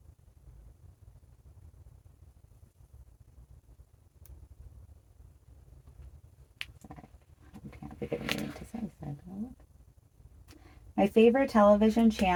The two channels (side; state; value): both; identical; correlation 1.00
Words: Can't think of anything to say. So my favorite television